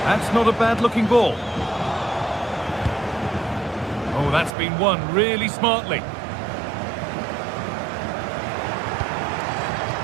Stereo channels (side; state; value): left; drops out; at 4.5 s